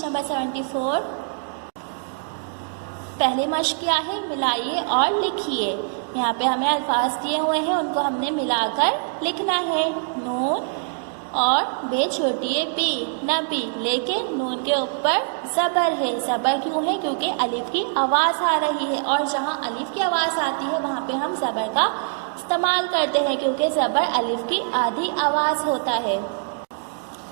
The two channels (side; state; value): left; silent; digital silence